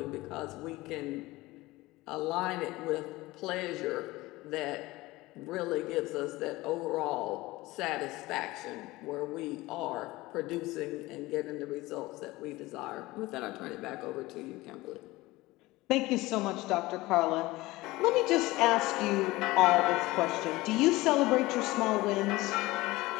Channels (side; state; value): right; quieter; 19.8 dB